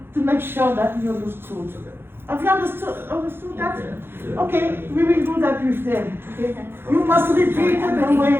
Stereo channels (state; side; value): late; left; 0.11 ms